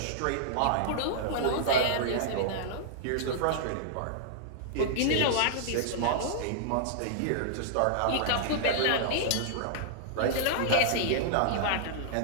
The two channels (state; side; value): different; both; correlation -0.02